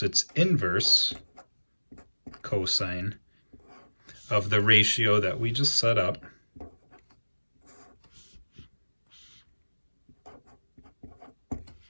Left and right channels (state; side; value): inverted; both; correlation -1.00